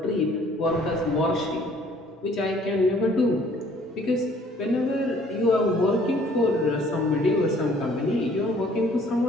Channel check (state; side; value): normal; both; correlation 0.58